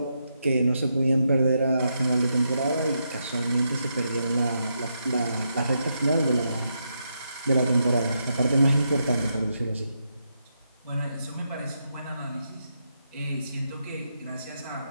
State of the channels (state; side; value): inverted; both; correlation -0.82